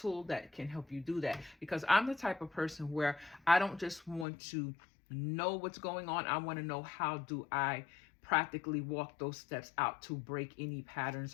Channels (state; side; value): drops out; right; at 4.2 s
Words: that can help you do that. Because I'm the type of person where I don't just want to know what's going on. I want to know, how do I practically walk those steps out to break any patterns